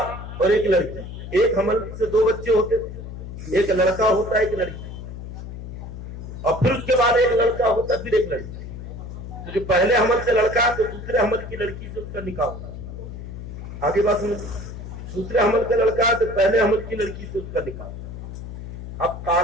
اور ایک لڑکی. ایک حمل سے دو بچے ہوتے تھے، ایک لڑکا ہوتا ایک لڑکی، اور پھر اس کے بعد ایک لڑکا ہوتا پھر ایک لڑکی. تو جو پہلے حمل سے لڑکا تو دوسرے حمل کی لڑکی سے اس کا نکاح ہوتا. آگے بات سنیں، دوسرے حمل کا لڑکا ہے تو پہلے حمل کی لڑکی سے اس کا نکاح. اب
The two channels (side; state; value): left; noise; hum, 10 dB below the sound